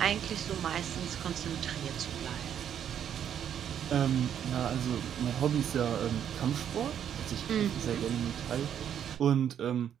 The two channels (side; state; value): left; quieter; 9.3 dB